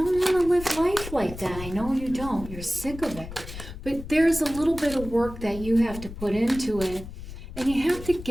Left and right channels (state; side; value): noise; left; rumble, 12 dB below the sound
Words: want to live life like that. I know you don't. You're sick of it. But there's a little bit of work that you have to put into it. And you have to